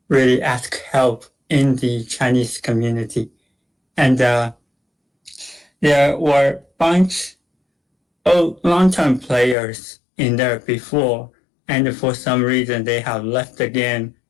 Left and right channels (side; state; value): right; drops out; at 9.6 s